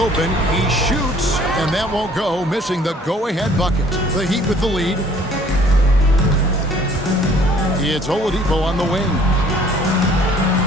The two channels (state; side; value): normal; both; correlation 0.57